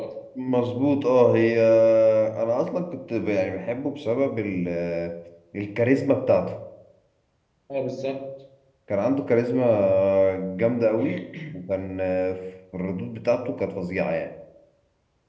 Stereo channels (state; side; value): identical; both; correlation 1.00